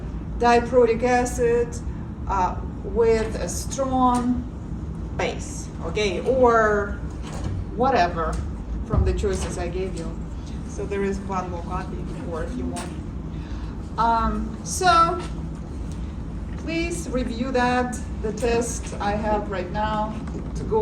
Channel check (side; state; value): both; identical; correlation 1.00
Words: diprotic acid with a strong base, okay, or whatever from the choices I gave you. So there is one more copy for if you want. So please review that. The test I have right now to